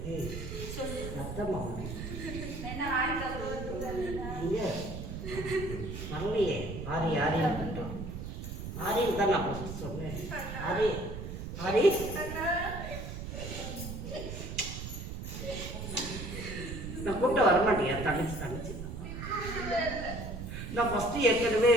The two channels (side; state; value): right; noise; rumble, 7 dB below the sound